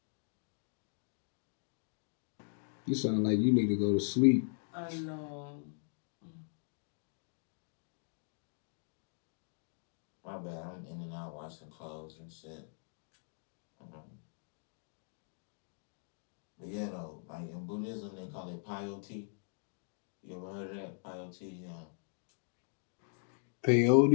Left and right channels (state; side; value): silent; right; digital silence